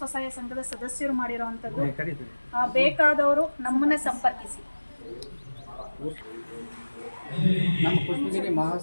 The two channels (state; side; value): inverted; both; correlation -1.00